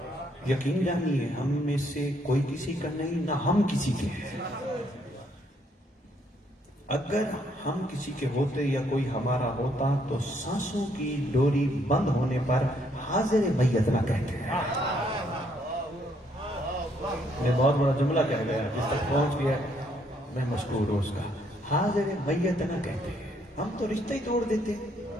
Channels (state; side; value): normal; both; correlation 0.70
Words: یقین جانیے ہم میں سے کوئی کسی کا نہیں, نہ ہم کسی کے ہیں. اگر ہم کسی کے ہوتے یا کوئی ہمارا ہوتا تو سانسوں کی ڈوری بند ہونے پر حاضر میت نہ کہتے ہیں. میں بہت بڑا جملہ کہہ گیا, جس تک پہنچ گیا میں مشکور ہوں اس کا. حاضر میت نہ کہتے ہیں. ہم تو رشتہ ہی توڑ دیتے.